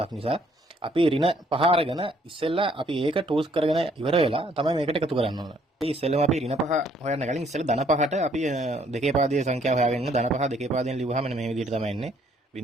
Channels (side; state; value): both; normal; correlation 0.65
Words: නිසා. අපි ඍණ 5 අරගෙන ඉස්සෙල්ලා අපි ඒක ටූස් කරගෙන ඉවර වෙලා තමයි මේකට එකතු කරන්න ඕන. ඉතින් ඉස්සෙල්ලාම අපි ඍණ 5 හොයන්න කලින් ඉස්සෙල්ලා ධන 5ට අපි දෙකේ පාදයේ සංඛ්‍යාව හොයාගෙන ධන 5 දෙකේ පාදයෙන් ලියුවාම මේ විදිහට තමයි එන්නේ.